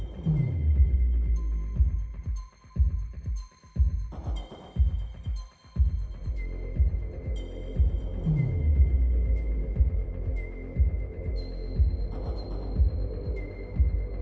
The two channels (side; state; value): both; identical; correlation 1.00